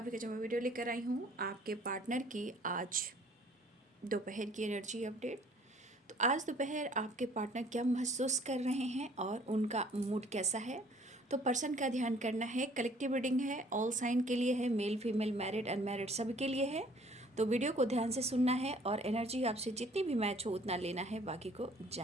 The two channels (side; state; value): both; normal; correlation 0.56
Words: जो मैं वीडियो लेकर आई हूँ आपके पार्टनर की आज दोपहर की एनर्जी अपडेट। तो आज दोपहर आपके पार्टनर क्या महसूस कर रहे हैं और उनका मूड कैसा है। तो पर्सन का ध्यान करना है। कलेक्टिव रीडिंग है, ऑल साइन के लिए है, मेल फीमेल मैरिड अनमैरिड सभी के लिए है। तो वीडियो को ध्यान से सुनना है और एनर्जी आपसे जितनी भी मैच हो उतना लेना है, बाकी को